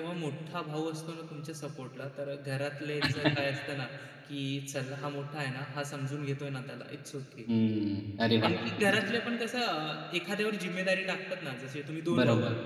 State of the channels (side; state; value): both; identical; correlation 1.00